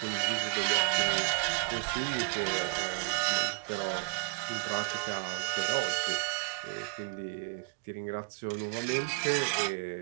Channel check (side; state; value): left; quieter; 38.7 dB